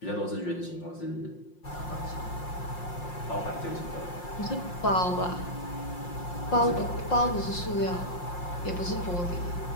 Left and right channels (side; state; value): right; late; 5.6 ms